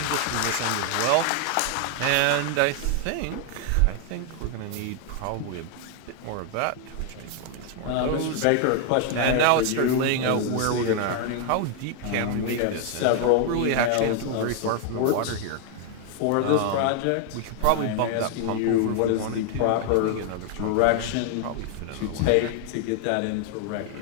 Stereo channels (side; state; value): both; different; correlation 0.00